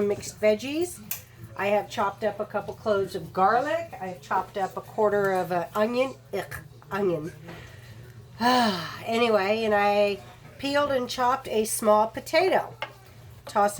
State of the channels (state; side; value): identical; both; correlation 1.00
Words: mixed veggies. I have chopped up a couple cloves of garlic. I have chopped up a quarter of an onion. Onion. Anyway, and I peeled and chopped a small potato. Toss